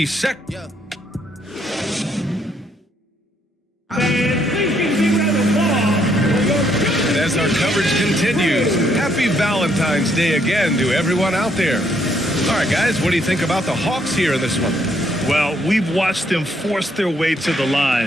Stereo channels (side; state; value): both; normal; correlation 0.71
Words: And as our coverage continues, happy Valentine's Day again to everyone out there. All right, guys, what do you think about the Hawks here in this one? Well, we've watched them force their way to the